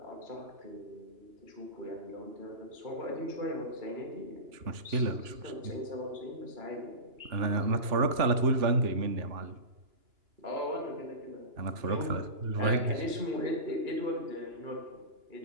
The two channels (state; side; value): late; left; 2.9 ms